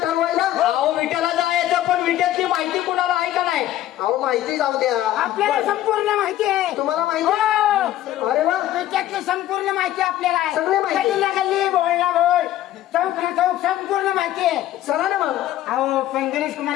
ठरवायला विट्याला जायचं पण विट्यातली माहिती कुणाला आहे का नाही अहो माहिती जाऊ द्या. आपल्याला संपूर्ण माहिती आहे. तुम्हाला माहिती हो. आहे? अरे वा, त्याच्यातली संपूर्ण माहिती आपल्याला आहे. सगळी माहिती. गल्लीला गल्ली, बोलला बोल, चौक ना चौक संपूर्ण माहिती आहे. चला ना मग. अहो पण गणेश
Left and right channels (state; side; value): quieter; right; 13.3 dB